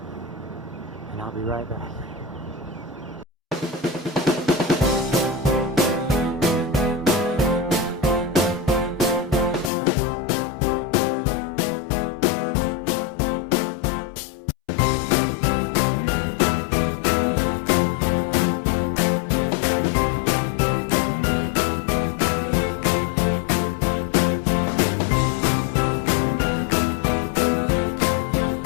And I'll be right back.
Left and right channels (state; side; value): drops out; right; at 9.7 s